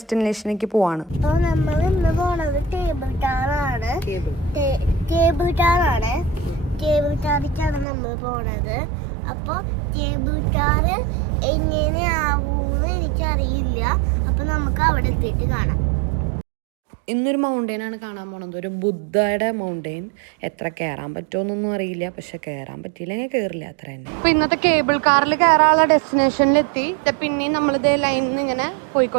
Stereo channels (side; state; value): left; drops out; at 7.9 s